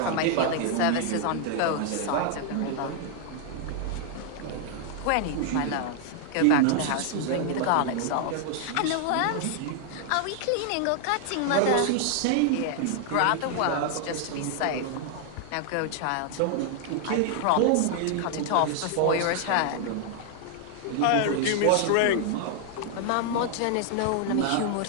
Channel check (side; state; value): both; different; correlation 0.00